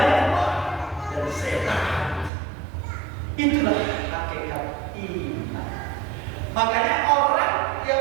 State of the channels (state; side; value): drops out; left; at 2.3 s